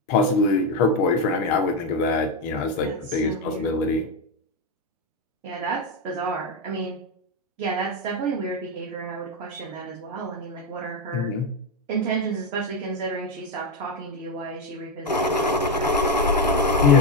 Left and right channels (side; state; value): both; normal; correlation 0.08